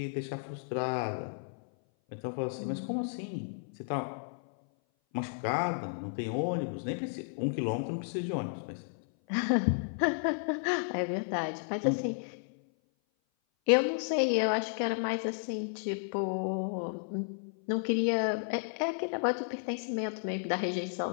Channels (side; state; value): right; silent; 56 dB below the other